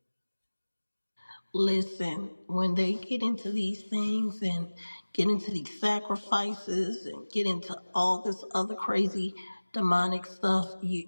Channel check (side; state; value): both; inverted; correlation -1.00